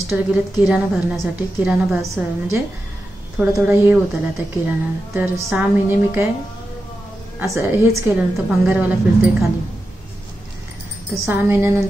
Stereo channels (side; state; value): both; normal; correlation 0.90